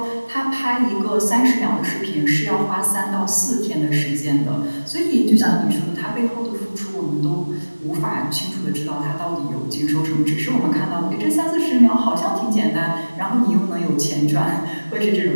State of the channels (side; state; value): both; inverted; correlation -1.00